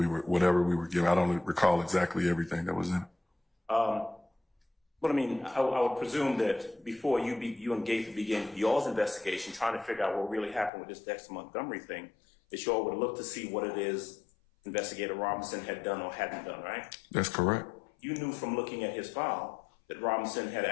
whatever we were given. I don't recall exactly everything that was in it. But I mean, I would presume that before you and Gaither began y'all's investigation, trying to figure out what really happened with this Dexter Montgomery thing, that y'all would look to see what it is Investigator Robinson had done or hadn't done, right? That's correct. You knew from looking at his file that Robinson had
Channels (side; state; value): right; drops out; at 10.7 s